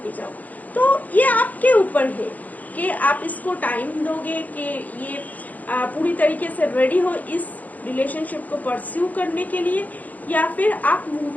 जाओ। तो ये आपके ऊपर है कि आप इसको टाइम दोगे कि ये पूरी तरीके से रेडी हो इस रिलेशनशिप को परस्यू करने के लिए, या फिर आप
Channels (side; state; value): right; late; 0.079 ms